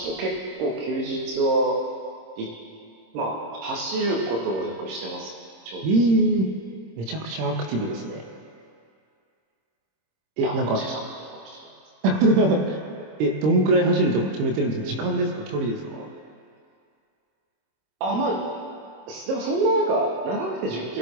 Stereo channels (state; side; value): late; left; 26 ms